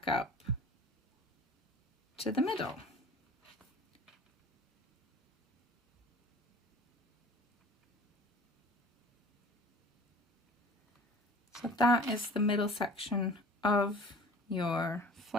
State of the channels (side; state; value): both; normal; correlation 0.44